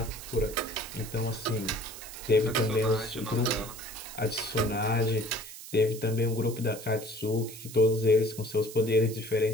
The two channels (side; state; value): right; noise; hiss, 13 dB below the sound